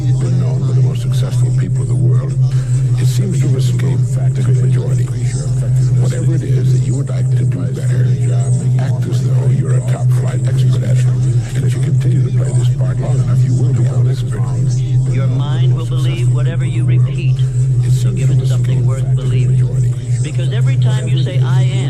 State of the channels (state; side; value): identical; both; correlation 1.00